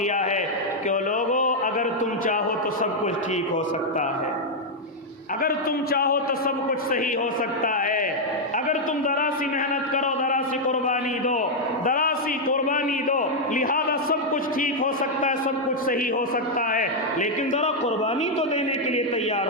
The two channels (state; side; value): normal; both; correlation -0.01